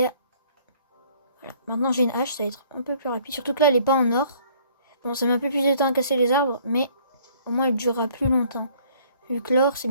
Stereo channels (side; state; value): both; inverted; correlation -0.58